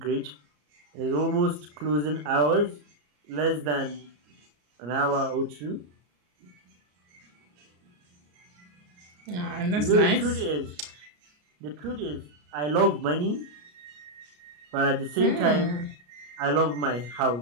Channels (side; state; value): left; late; 34 ms